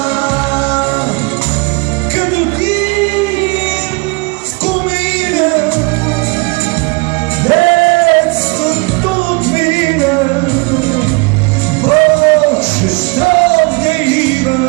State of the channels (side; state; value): left; quieter; 28.8 dB